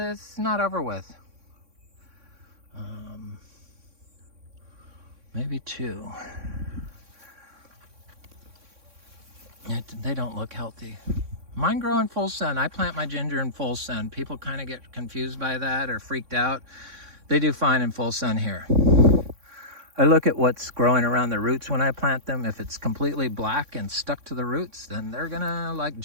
not over with. Maybe two. They don't look healthy. Mine grow in full sun. I plant my ginger in full sun. People kind of get confused by that or freaked out. They do fine in full sun here. I look at what's growing around the roots when I plant them. If it's completely black and stuck to the roots, then they're gonna like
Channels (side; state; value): left; late; 3.6 ms